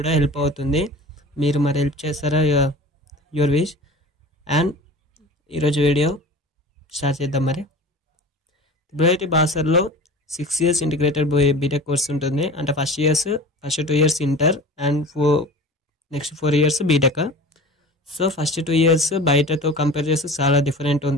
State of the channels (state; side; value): normal; both; correlation 0.37